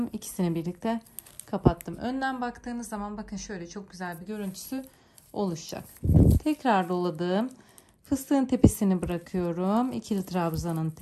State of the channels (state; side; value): identical; both; correlation 1.00